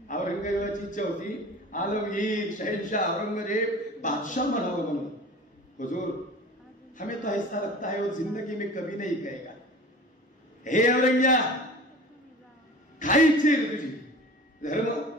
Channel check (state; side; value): normal; both; correlation 0.40